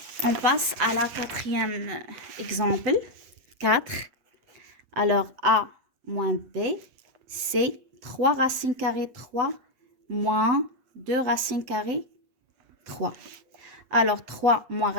On passe à la quatrième exemple. 4. Alors, A moins B, c'est 3 racine carrée 3 moins 2 racine carrée 3. Alors, 3 moins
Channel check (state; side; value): late; left; 8.3 ms